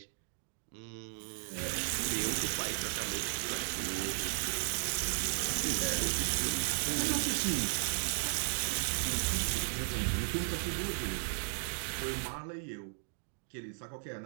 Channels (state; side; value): silent; left; digital silence